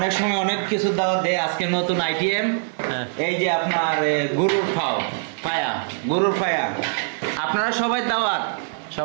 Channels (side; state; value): left; silent; digital silence